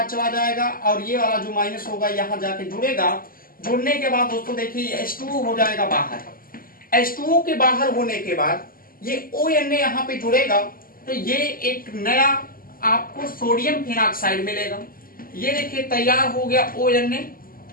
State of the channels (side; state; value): right; late; 0.42 ms